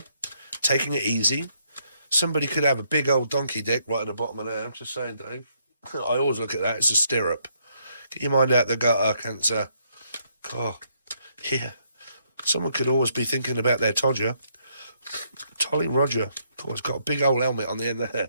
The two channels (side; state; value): both; inverted; correlation -0.73